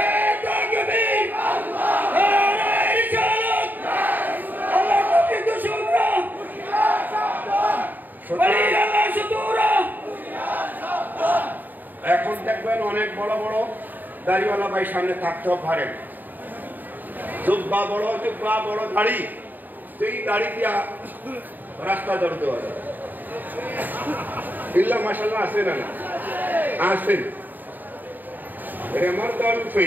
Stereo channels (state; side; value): late; left; 0.088 ms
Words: এখন দেখবেন অনেক বড় বড় দাড়িওয়ালা ভাই সামনে থাকতেও পারেন, জুব্বা বড়, জুব্বা বড় দাড়ি, যেই দাড়ি দিয়া রাস্তা দৌড় দেওয়া যায়। ইল্লা মাশাআল্লাহ আছে না? আছেন। আমার দাড়ি